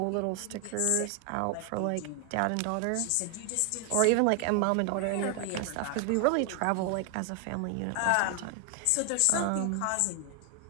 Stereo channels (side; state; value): both; different; correlation 0.00